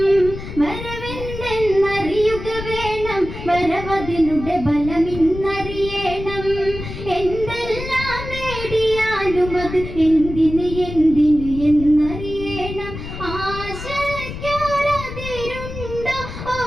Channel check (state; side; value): noise; left; rumble, 9 dB below the sound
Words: വരവെന്തെന്നറിയുക വേണം വരവതിനുടെ ബലമിന്നറിയണം എന്തെല്ലാം നേടിയാലും അത് എന്തിന് എന്തിന് എന്നറിയണം ആശയ്ക്കൊരതിരുണ്ടോ